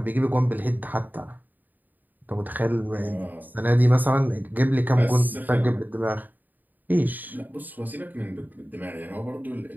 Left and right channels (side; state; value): left; late; 0.086 ms